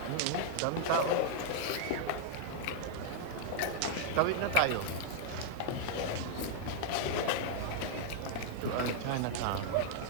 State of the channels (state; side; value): different; both; correlation -0.01